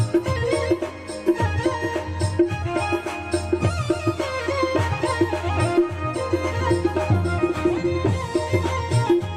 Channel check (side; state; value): both; identical; correlation 1.00